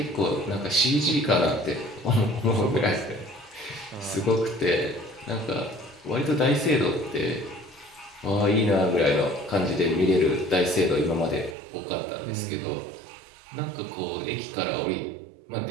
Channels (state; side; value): drops out; left; at 11.6 s